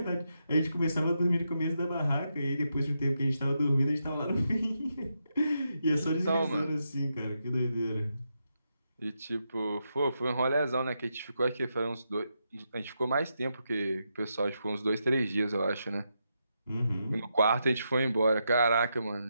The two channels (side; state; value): both; inverted; correlation -0.84